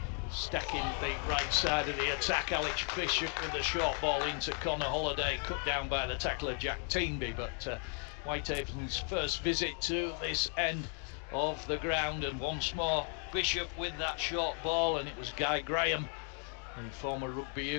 stacking the right side of the attack. Alex Bishop with the short ball into Connor Holliday, cut down by the tackler Jack Teenby. But Whitehaven's first visit to this end of the ground, and once more Bishop with that short ball, and it was Guy Graham, the former rugby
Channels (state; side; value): quieter; right; 39.1 dB